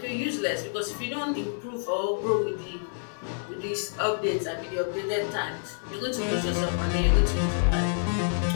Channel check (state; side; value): silent; right; digital silence